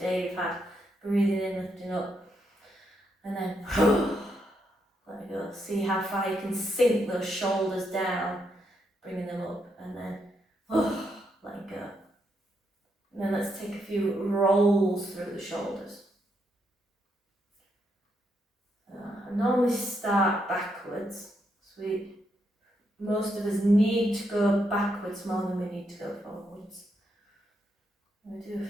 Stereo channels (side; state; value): both; normal; correlation 0.79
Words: day you've had. Breathing in, lifting up, and then let go. See how far you can sink those shoulders down, bringing them up, and then let go. And then let's take a few rolls through the shoulders. I normally start backwards, so most of us need to go backwards more than we need to go forwards. I'm going to do a